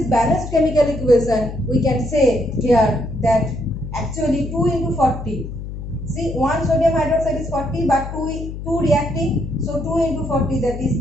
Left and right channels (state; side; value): noise; left; hum, 8 dB below the sound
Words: balanced chemical equation, we can say here that actually 2 into 40. See, 1 sodium hydroxide is 40, but 2 reacting, so 2 into 40, that is